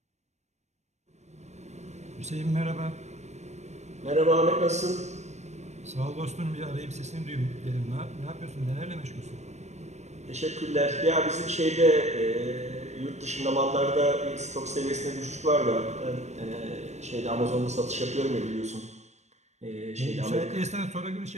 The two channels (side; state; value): left; late; 0.33 ms